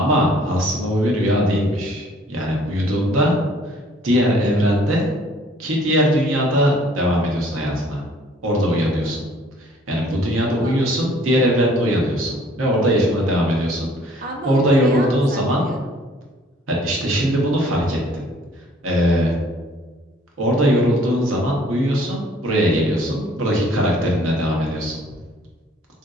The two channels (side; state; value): both; normal; correlation 0.57